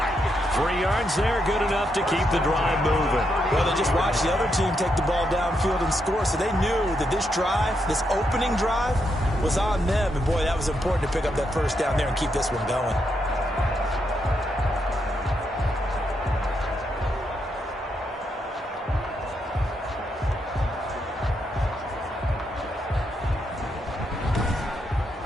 3 yards there, good enough to keep the drive moving. Well, they just watched the other team take the ball downfield and score, so they knew that this drive, this opening drive, was on them. And, boy, that was important to pick up that first down there and keep this one going.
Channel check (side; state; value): both; normal; correlation 0.80